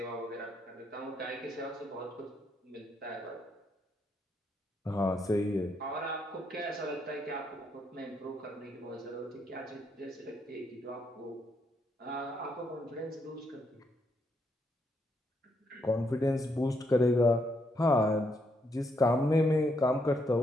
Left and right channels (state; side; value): normal; both; correlation 0.76